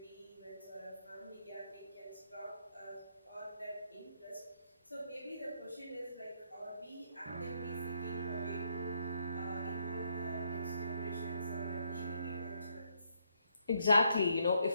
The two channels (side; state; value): both; inverted; correlation -0.75